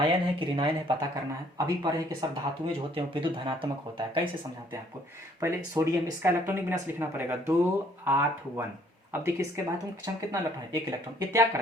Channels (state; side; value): normal; both; correlation 0.62